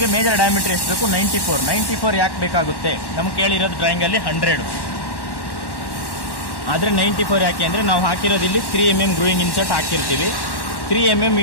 ಮೇಜರ್ ಡಯಾಮೀಟ್ರ್ ಎಷ್ಟು ಬೇಕು? 94 ಯಾಕೆ ಬೇಕಾಗುತ್ತೆ? ನಮ್ಗೆ ಕೇಳಿರೋದು ಡ್ರಾಯಿಂಗಲ್ಲಿ 100, ಆದರೆ 94 ಯಾಕೆ ಅಂದರೆ ನಾವು ಹಾಕಿರೋದು ಇಲ್ಲಿ 3 mm ಗ್ರೂಯಿಂಗ್ ಇನ್ಸರ್ಟ್ ಹಾಕಿರ್ತೀವಿ. 3 mm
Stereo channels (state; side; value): late; right; 1.1 ms